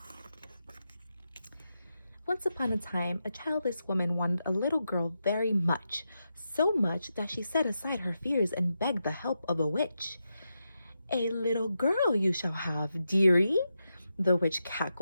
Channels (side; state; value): both; inverted; correlation -0.87